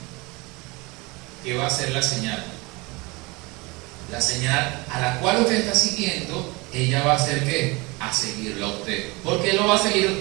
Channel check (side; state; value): left; quieter; 25.3 dB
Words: ¿Qué va a ser la señal? La señal a la cual usted está siguiendo, ella va a hacer ¿qué? A seguirlo a usted. ¿Por qué lo va a seguir a